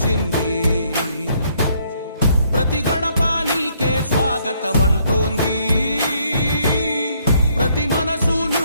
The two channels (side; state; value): both; inverted; correlation -0.68